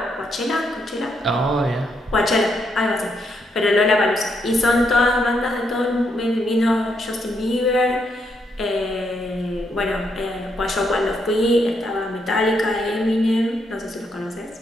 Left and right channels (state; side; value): normal; both; correlation 0.77